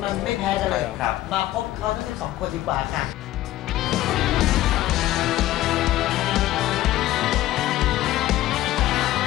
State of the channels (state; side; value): quieter; right; 15.0 dB